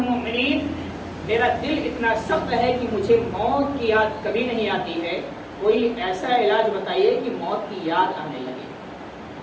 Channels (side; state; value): both; identical; correlation 1.00